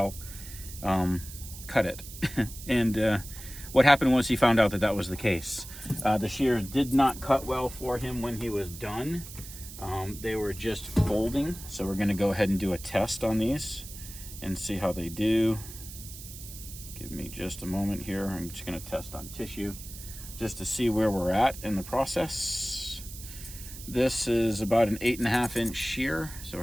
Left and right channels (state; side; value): noise; right; hiss, 13 dB below the sound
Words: cut it. And what happened was he found out that that was the case. The shears did not cut well for him when he was done. They were just folding, so we're going to go ahead and do a test on these and see how they do. Give me just a moment here. I'm just going to test on tissue just to see where we're at in the process. This is about an 8.5 inch shear, so we're